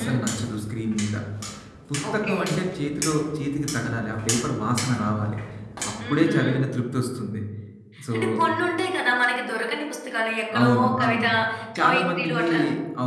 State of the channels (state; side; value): identical; both; correlation 1.00